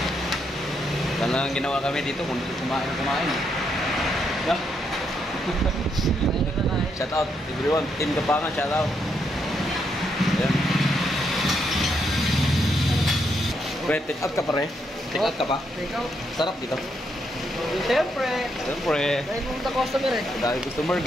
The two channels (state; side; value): normal; both; correlation 0.78